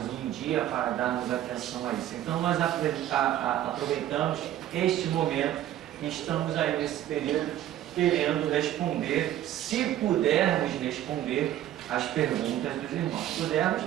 um dia para darmos atenção a isso. Então nós aproveitamos este momento e estamos aí nesse período querendo responder, se pudermos responder as perguntas dos irmãos. Pudermos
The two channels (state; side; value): quieter; left; 12.5 dB